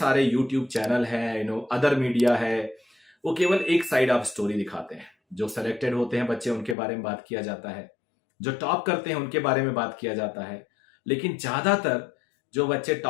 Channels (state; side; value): drops out; right; at 6.8 s